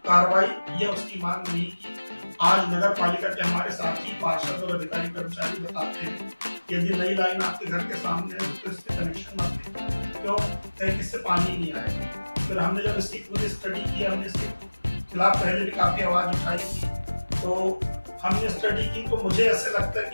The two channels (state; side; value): inverted; both; correlation -1.00